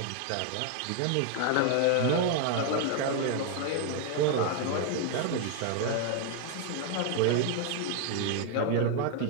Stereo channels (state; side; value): different; both; correlation 0.00